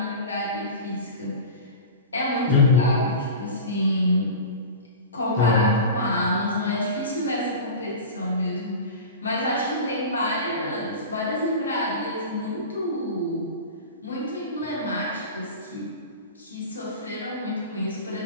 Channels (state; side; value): inverted; both; correlation -0.30